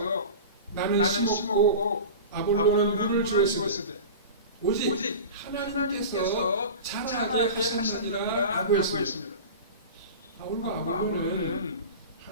나는 심었고 아볼로는 물을 주었으되 오직 하나님께서 자라게 하셨느니라고 했습니다. 바울과 아볼로는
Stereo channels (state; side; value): inverted; both; correlation -0.32